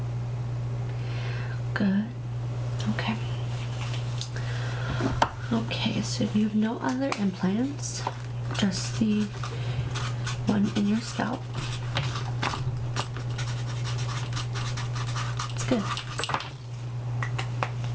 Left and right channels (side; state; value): both; identical; correlation 1.00